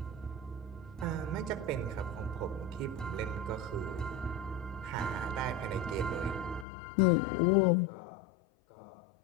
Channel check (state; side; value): drops out; right; at 6.7 s